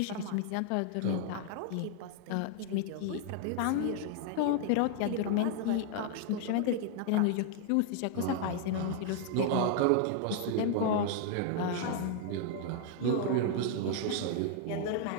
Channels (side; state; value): both; different; correlation 0.00